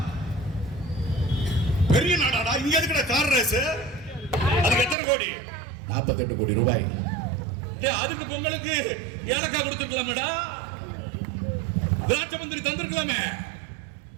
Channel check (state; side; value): drops out; left; at 5.0 s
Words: பெரிய நாடாடா. இங்க இருக்கிற கார் ரேஸ் அதுக்கு எத்தனை கோடி? 48 கோடி ரூபாய். அதுக்கு பொங்கலுக்கு ஏலக்காய் கொடுத்துக்கலாமேடா, திராட்சை மந்திரி தந்திருக்கலாமே.